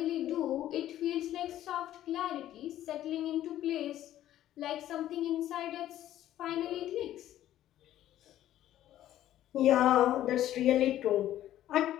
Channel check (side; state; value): right; quieter; 12.8 dB